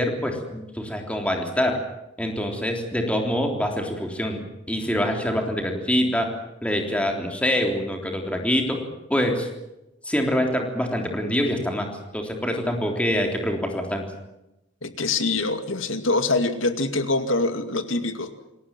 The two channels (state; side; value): normal; both; correlation 0.52